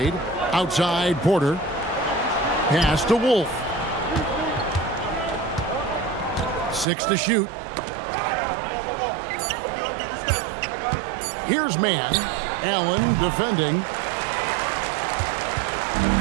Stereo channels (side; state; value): left; drops out; at 6.9 s